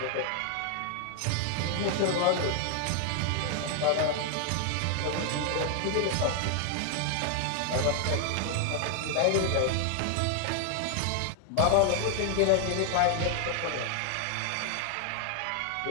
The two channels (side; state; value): both; different; correlation 0.00